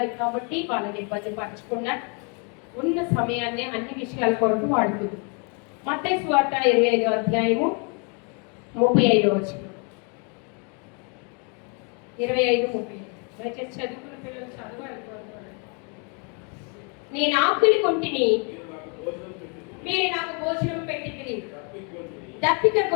కాబట్టి వాళ్ళని ఇబ్బంది పరచకుండా ఉన్న సమయాన్ని అన్ని విషయాల కొరకు వాడుకుందాం. మత్తయి సువార్త 25:35 25:30 దయచేసి చదువుకున్న పిల్లలు చదవాలి. నేను ఆకలి కొంటిని, మీరు నాకు భోజనం పెట్టితిరి, దప్పిక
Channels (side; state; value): right; quieter; 36.1 dB